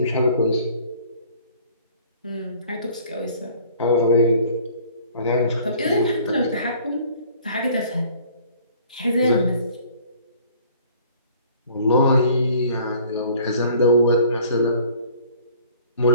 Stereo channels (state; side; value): inverted; both; correlation -0.53